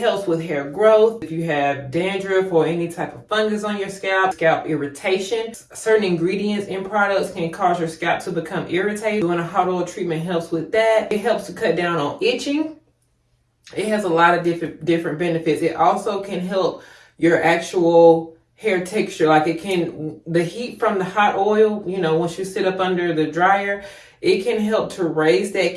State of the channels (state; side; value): identical; both; correlation 1.00